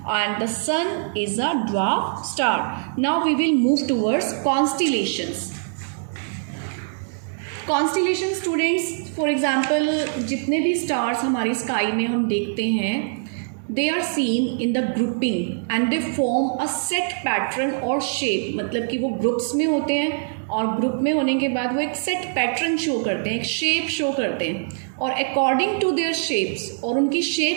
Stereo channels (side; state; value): left; silent; digital silence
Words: the sun is a dwarf star. Now we will move towards constellations. Constellation students, for example जितने भी स्टार्स हमारी स्काई में हम देखते हैं, they are seen in the grouping and they form a set pattern और shape. मतलब कि वो ग्रुप्स में होते हैं और ग्रुप में होने के बाद वो एक सेट पैटर्न शो करते हैं, एक शेप शो करते हैं. और अकॉर्डिंग टू देयर शेप्स, और उनकी